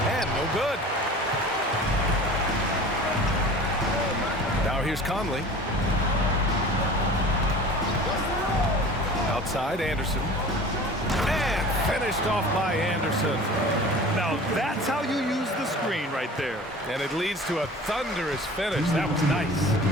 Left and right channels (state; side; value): normal; both; correlation 0.41